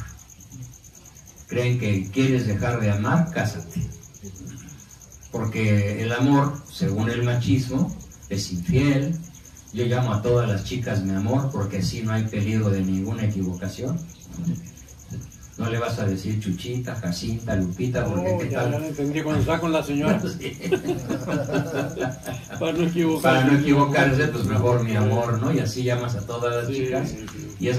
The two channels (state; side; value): identical; both; correlation 1.00